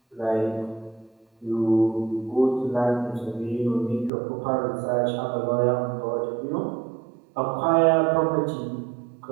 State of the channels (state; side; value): drops out; left; at 4.1 s